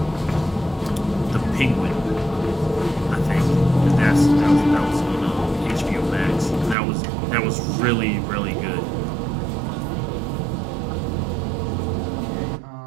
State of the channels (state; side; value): drops out; left; at 6.8 s